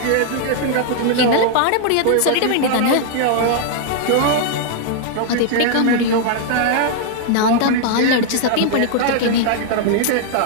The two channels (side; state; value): both; different; correlation 0.00